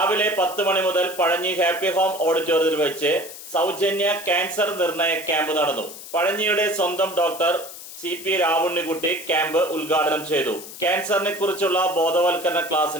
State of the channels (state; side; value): noise; left; hiss, 13 dB below the sound